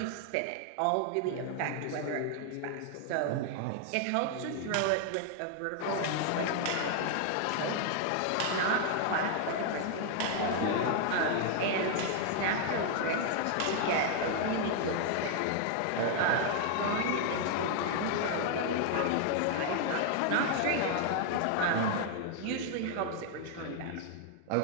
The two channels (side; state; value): both; different; correlation 0.00